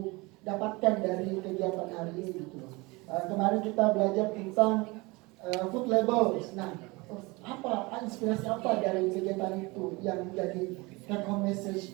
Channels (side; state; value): left; quieter; 24.6 dB